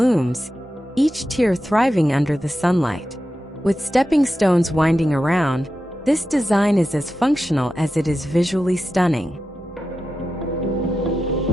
each tier thriving under the sunlight. With stepping stones winding around, this design is as functional as it is visually stunning.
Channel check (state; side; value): normal; both; correlation 0.90